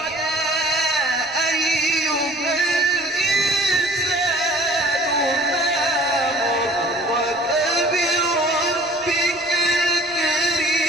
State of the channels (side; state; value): right; noise; rumble, 26 dB below the sound